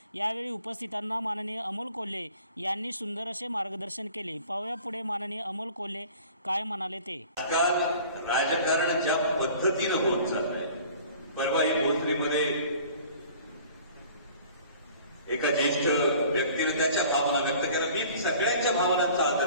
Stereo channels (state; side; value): inverted; both; correlation -0.48